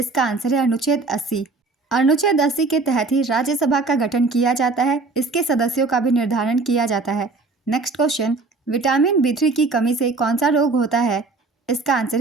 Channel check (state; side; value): quieter; left; 3.8 dB